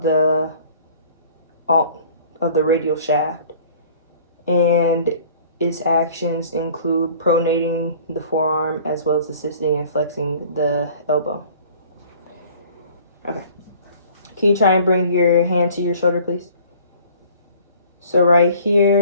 the radial shaft, and its actions include pronating the forearm as well as assisting in flexing the elbow. Okay. Can you try and bring your hand to your shoulder, please? So right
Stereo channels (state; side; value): inverted; both; correlation -0.51